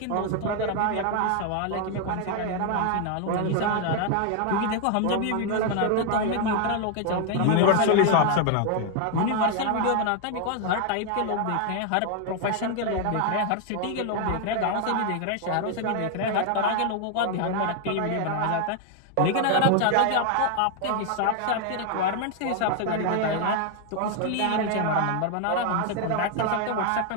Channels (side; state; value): both; different; correlation 0.00